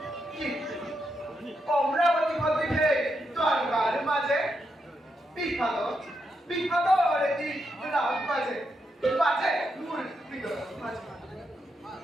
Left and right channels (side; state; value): both; normal; correlation 0.83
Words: অমরাবতী ভদ্রিকে দ্বারকার মাঝে বিখ্যাত বিখ্যাত একটি রাগ বাজে বাজে মূল বিগ্রহ মাঝে